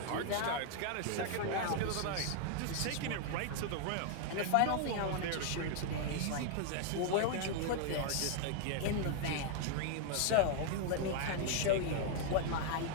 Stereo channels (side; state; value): both; different; correlation 0.00